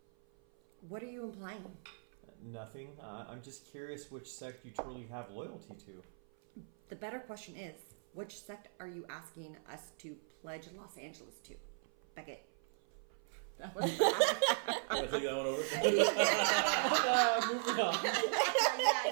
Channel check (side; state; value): left; silent; 52 dB below the other